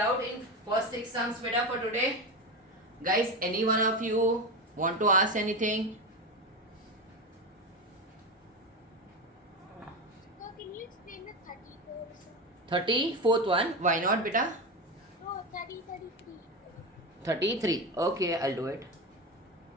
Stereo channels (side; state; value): both; normal; correlation 0.19